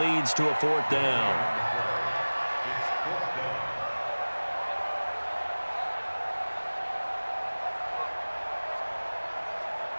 to a 4th down.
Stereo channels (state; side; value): inverted; both; correlation -1.00